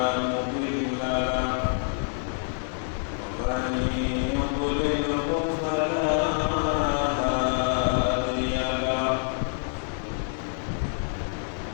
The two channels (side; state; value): right; silent; digital silence